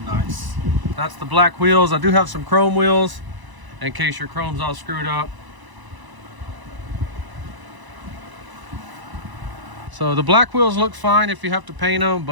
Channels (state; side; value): late; left; 1.0 ms